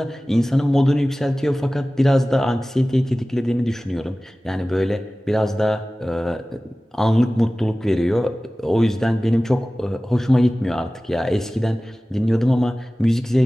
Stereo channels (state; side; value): normal; both; correlation 0.97